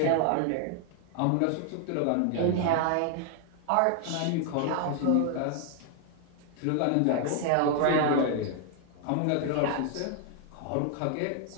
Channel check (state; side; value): different; both; correlation 0.00